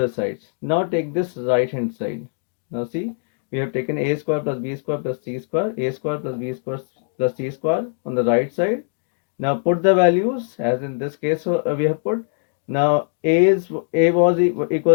sides. Now take this right hand side. Now see, we have taken a square plus b square plus c square, a square plus b square plus c square on the right side. Now put the values as in this case we have put. Now a was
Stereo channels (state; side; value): silent; right; digital silence